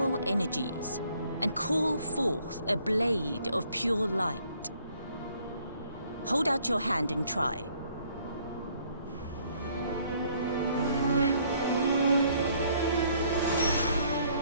energies and call forth a blade of pure light. Hold out your hand and try.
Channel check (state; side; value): inverted; both; correlation -0.64